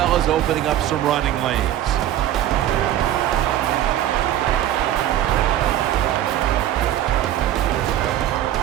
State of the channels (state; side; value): quieter; left; 12.2 dB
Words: as opening up some running lanes.